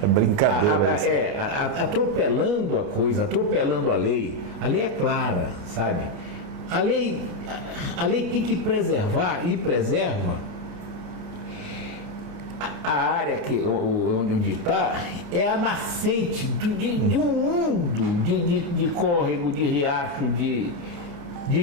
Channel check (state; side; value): late; left; 29 ms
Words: brincadeira. Atropelando a coisa, atropelando a lei. A lei é clara, sabe? A lei tem que preservar e preserva. A área onde está é a nascente de um mundo de córrego, de riacho, de